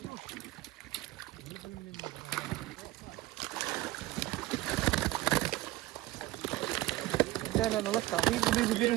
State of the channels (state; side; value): quieter; left; 18.0 dB